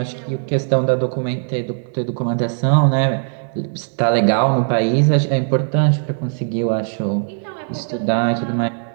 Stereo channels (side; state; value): left; silent; 66 dB below the other